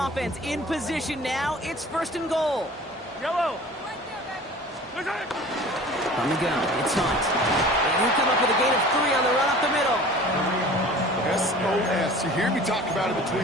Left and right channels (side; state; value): both; normal; correlation 0.43